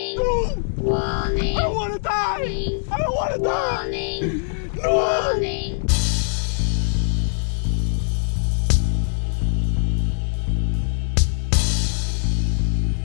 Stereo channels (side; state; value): right; silent; digital silence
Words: No! warning. I don't want to die! Warning. I don't want to die! Warning, No! warning.